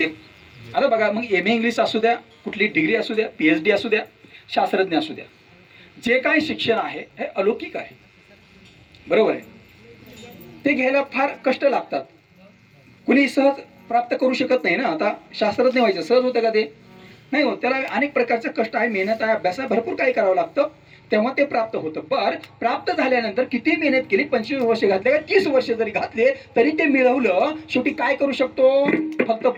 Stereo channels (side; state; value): both; identical; correlation 1.00